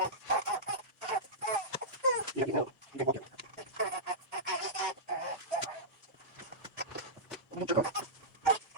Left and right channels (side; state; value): both; normal; correlation -0.14